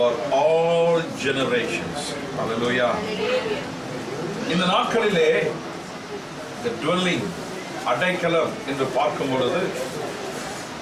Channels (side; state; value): both; identical; correlation 1.00